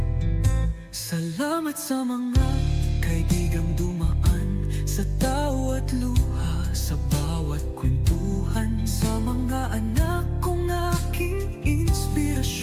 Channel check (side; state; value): both; identical; correlation 1.00